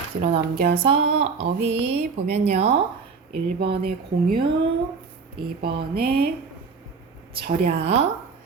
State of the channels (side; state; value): left; quieter; 5.1 dB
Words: 뒤로 넘겨서 어휘 보면요. 1번에 공유, 2번에 절약,